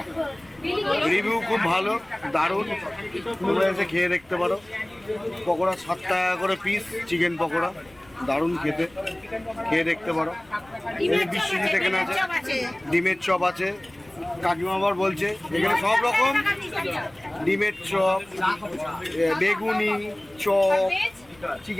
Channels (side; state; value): left; noise; rumble, 29 dB below the sound